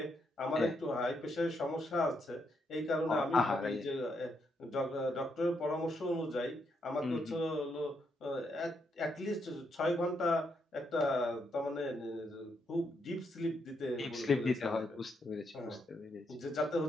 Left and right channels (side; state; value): both; normal; correlation 0.78